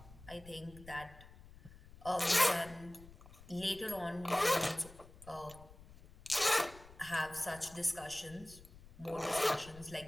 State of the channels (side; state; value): left; noise; rumble, 20 dB below the sound